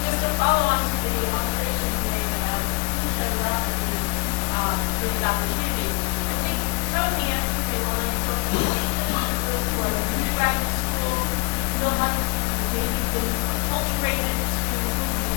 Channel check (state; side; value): quieter; right; 27.7 dB